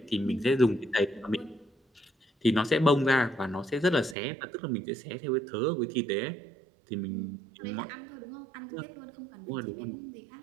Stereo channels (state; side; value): drops out; left; at 4.2 s